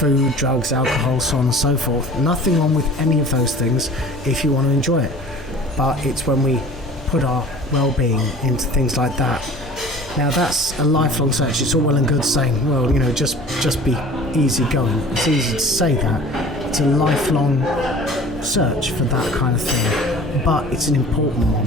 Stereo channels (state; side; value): normal; both; correlation 0.44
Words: drugs, alcohol, so on and so forth. Nothing wrong with any of those things if you want to enjoy it. But it's when we put our well-being into things like that. Now, that's a lifelong search. It's all well and good saying, well, just be easy going. It's easy to say that. It's a lifelong search for that kind of thing. But it's an important one,